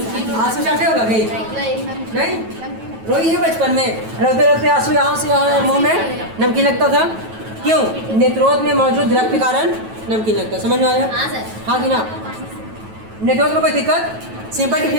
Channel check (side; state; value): left; late; 9.2 ms